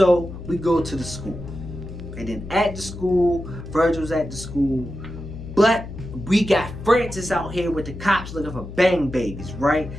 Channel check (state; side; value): noise; left; hum, 11 dB below the sound